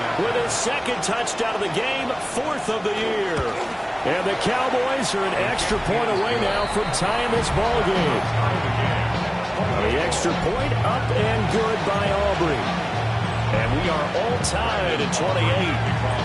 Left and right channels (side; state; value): both; identical; correlation 1.00